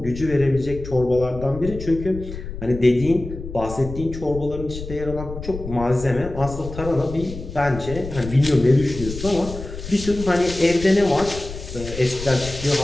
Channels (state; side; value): noise; left; rumble, 10 dB below the sound